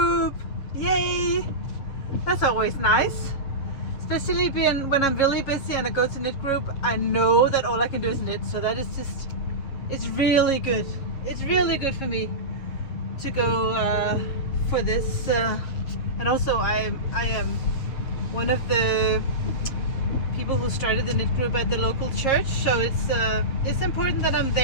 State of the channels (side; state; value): right; late; 7.3 ms